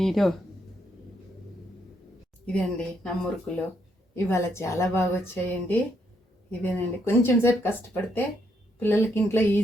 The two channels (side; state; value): both; normal; correlation 0.75